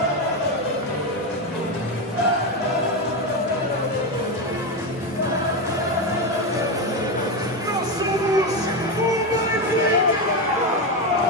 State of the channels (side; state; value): both; normal; correlation 0.13